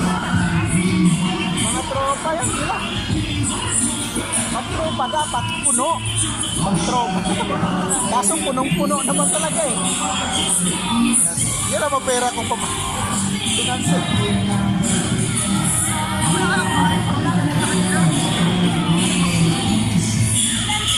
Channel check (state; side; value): identical; both; correlation 1.00